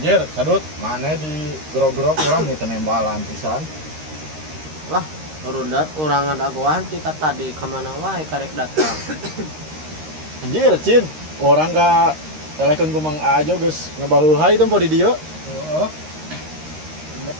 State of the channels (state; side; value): late; left; 13 ms